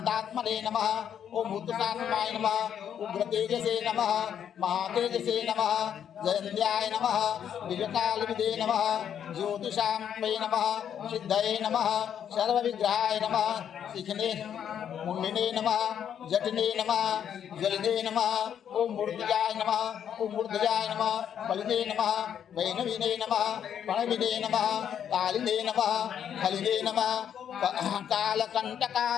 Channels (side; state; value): right; quieter; 8.9 dB